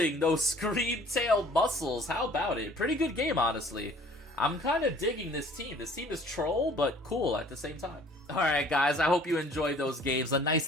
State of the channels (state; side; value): normal; both; correlation 0.53